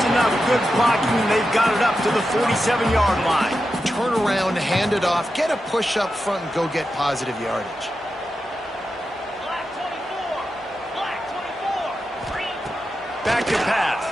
enough good blocking, and they've got it up to the 47-yard line. Turn around, hand it off, get a push up front, and go get positive yardage. Back to pass.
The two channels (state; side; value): normal; both; correlation 0.90